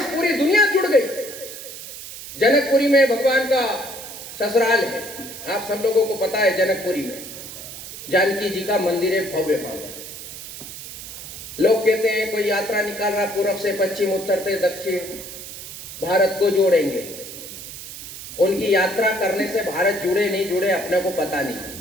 पूरी दुनिया जुड़ गई। जनकपुरी में भगवान का ससुराल है, आप सब लोगों को पता है। जनकपुरी में जानकी जी का मंदिर है, भव्य भव्य। लोग कहते हैं कोई यात्रा निकाल रहा, पूर्व से पश्चिम, उत्तर से दक्षिण, भारत को जोड़ेंगे। उनकी यात्रा करने से भारत जुड़े नहीं जुड़े अपने को पता नहीं,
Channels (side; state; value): right; noise; hiss, 12 dB below the sound